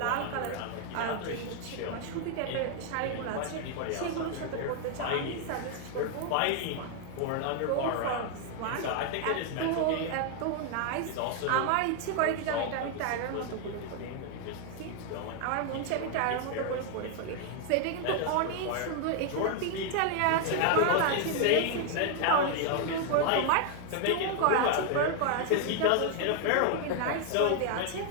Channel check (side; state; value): both; different; correlation 0.00